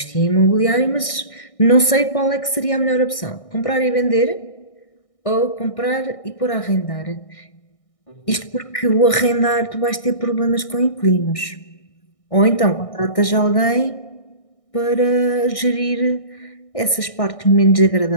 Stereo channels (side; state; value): right; late; 1.6 ms